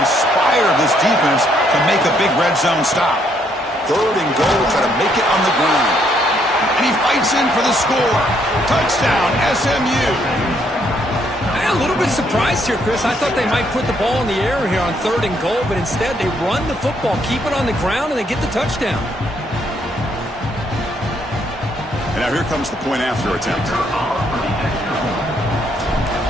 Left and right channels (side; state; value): both; normal; correlation 0.71